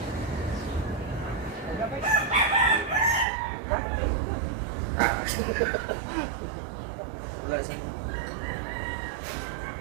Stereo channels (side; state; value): left; drops out; at 3.2 s